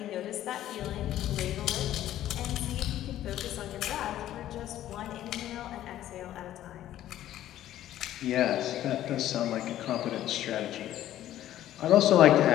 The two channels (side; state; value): right; quieter; 12.8 dB